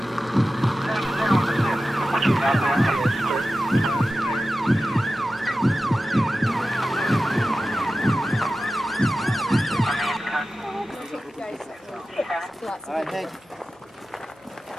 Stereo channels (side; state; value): both; normal; correlation 0.94